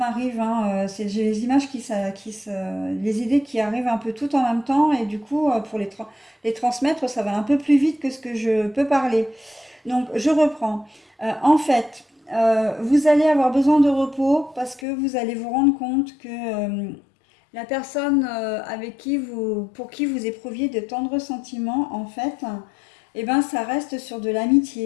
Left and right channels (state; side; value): drops out; right; at 14.9 s